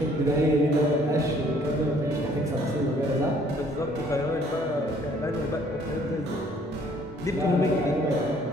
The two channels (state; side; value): normal; both; correlation 0.60